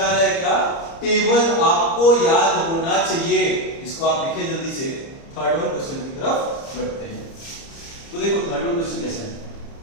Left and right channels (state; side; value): late; right; 30 ms